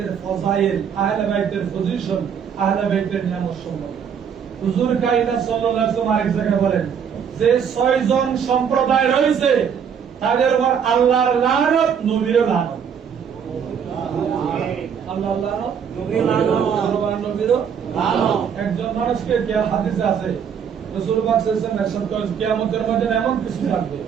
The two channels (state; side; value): quieter; left; 7.5 dB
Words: ফজাইল, আহলে বাইতের পজিশন, আহলে বাইতের নিয়ামত সম্পর্কে। হুজুর কায়নাত সাল্লাল্লাহু আলাইহি ওয়াসাল্লাম আরেক জায়গায় বলেন যে 6 জন সম্প্রদায় রয়েছে তাদের উপর আল্লাহর লানত, নবীর লানত। আল্লাহর লানত, নবীর লানত, নবীর লানত। একজন মানুষকে যে হাদিসে আছে রাসূল পাক সাল্লাল্লাহু আলাইহি ওয়াসাল্লাম ইরশাদ করেন কিয়ামতের ময়দানে এমন কিছু থাকবে